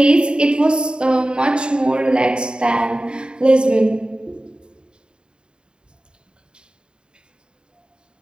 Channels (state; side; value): late; left; 0.050 ms